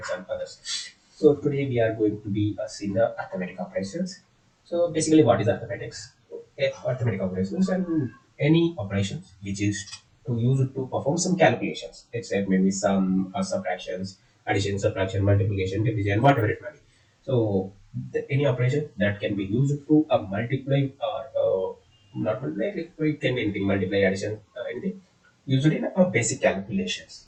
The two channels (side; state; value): both; identical; correlation 1.00